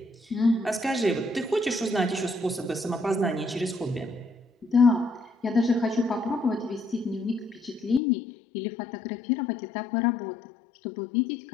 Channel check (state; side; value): drops out; right; at 8.0 s